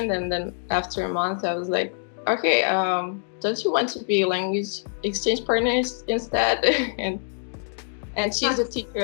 and then after a month, I was like, okay, don't you want to be language exchange partners instead? and she's a teacher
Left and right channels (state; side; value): silent; right; digital silence